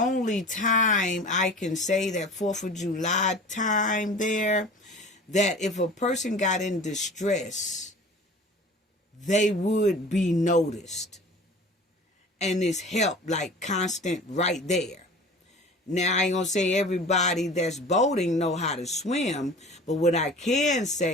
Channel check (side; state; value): both; normal; correlation 0.41